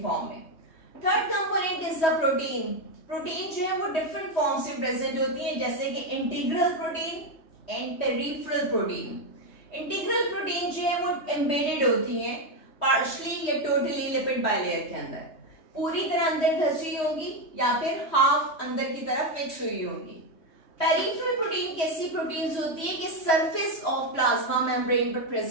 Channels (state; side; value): late; right; 3.2 ms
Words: फॉर्म में। Third component is the protein. Protein जो है वो डिफरेंट फॉर्म्स में प्रेजेंट होती है, जैसे कि integral protein and peripheral protein. Integral protein जो है वो एम्बेडेड होती हैं पार्शली या टोटली लिपिड बायलेयर के अंदर, पूरी तरह अंदर धसी होंगी या फिर हाफ अंदर की तरफ फिक्स हुई होंगी। पेरिफेरल प्रोटीन कैसी प्रोटीन्स होती है कि सरफेस ऑफ प्लाज्मा मेम्ब्रेन पर